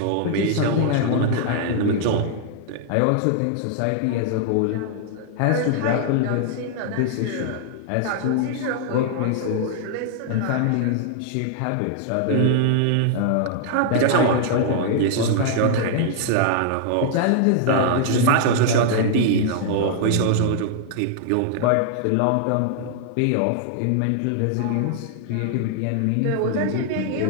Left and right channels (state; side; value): different; both; correlation -0.01